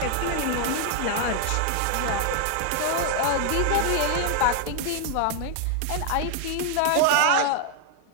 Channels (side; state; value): both; different; correlation 0.00